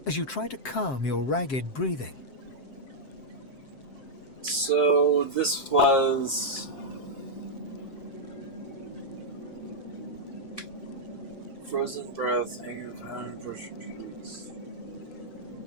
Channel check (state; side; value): late; right; 7.6 ms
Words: as you try to calm your ragged breathing. So this was frozen breath, hanging around, brushing trees.